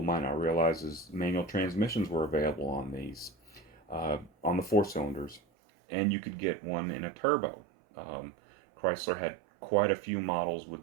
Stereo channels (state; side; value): drops out; left; at 5.4 s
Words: might not realize is manual transmissions were available on these, on the 4-cylinders, and you could get one in a turbo. Chrysler had quite a few models